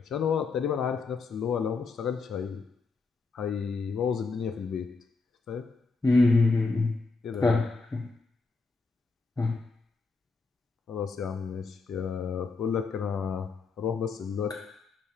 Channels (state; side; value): quieter; right; 4.1 dB